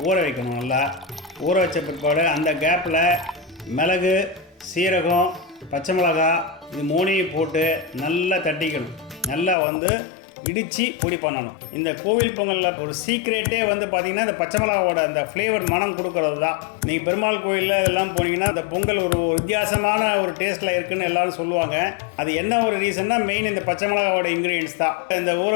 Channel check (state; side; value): drops out; right; at 9.6 s